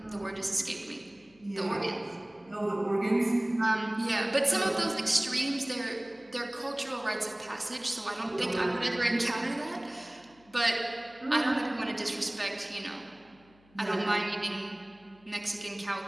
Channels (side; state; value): left; noise; hum, 30 dB below the sound